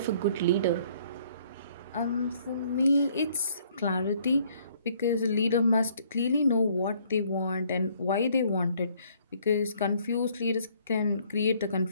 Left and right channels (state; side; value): inverted; both; correlation -0.63